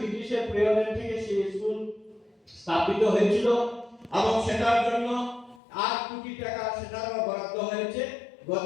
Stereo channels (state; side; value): drops out; right; at 5.6 s